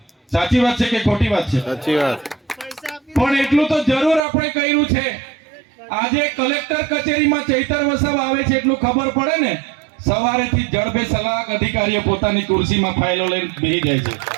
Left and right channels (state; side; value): drops out; left; at 4.2 s